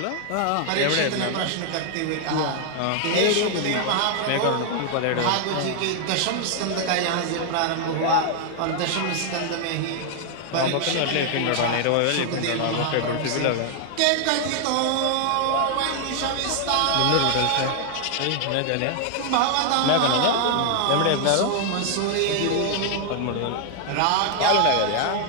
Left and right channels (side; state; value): both; different; correlation 0.00